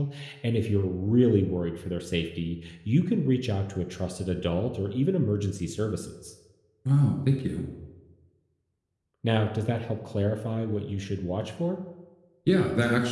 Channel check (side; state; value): both; identical; correlation 1.00